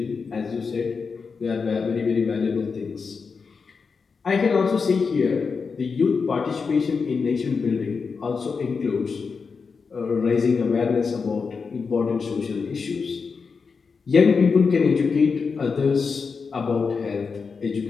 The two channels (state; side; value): quieter; right; 5.2 dB